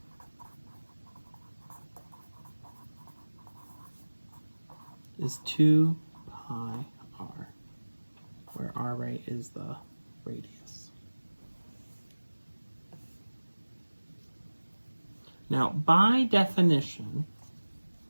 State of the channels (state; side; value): inverted; both; correlation -1.00